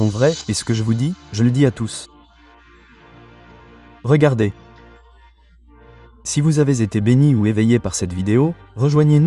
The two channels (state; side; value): identical; both; correlation 1.00